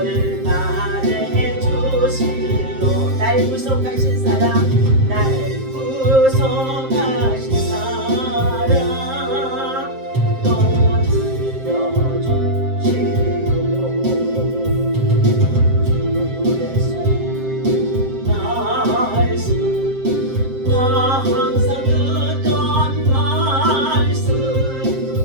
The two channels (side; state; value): left; late; 7.6 ms